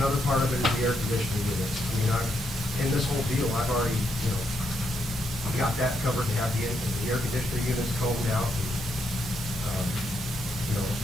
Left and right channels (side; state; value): both; normal; correlation 0.79